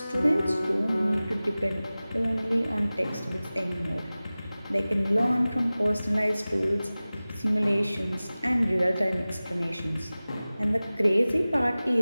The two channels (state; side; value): inverted; both; correlation -0.98